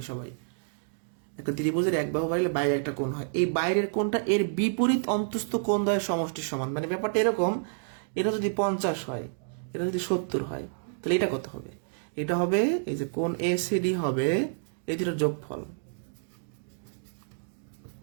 সবাই, একটা ত্রিভুজের এক বাহু বাড়লে বাইরে একটা কোণ হয়, এই বাইরের কোণটা এর বিপরীত অন্তস্থ কোণ দ্বয়ের সমষ্টির সমান। মানে ব্যাপারটা এরকম, এটা যদি 50 হয়, এটা যদি 70 হয়, তাহলে এটা কত হবে? এটা হবে এই যে কোণ এসিডি হবে এই দুটোর যোগফল।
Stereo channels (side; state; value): left; silent; digital silence